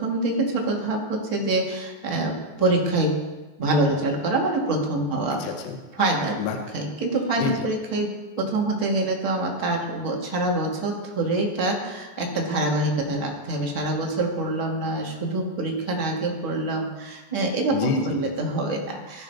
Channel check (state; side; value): late; right; 14 ms